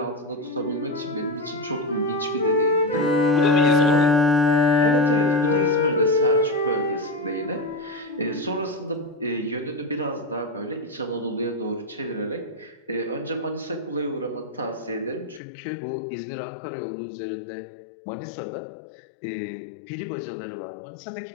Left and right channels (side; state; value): right; drops out; at 15.4 s